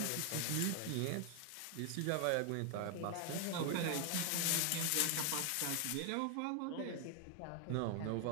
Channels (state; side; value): different; both; correlation 0.00